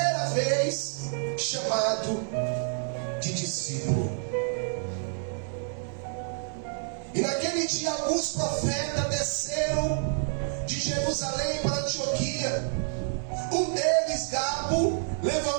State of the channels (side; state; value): left; silent; digital silence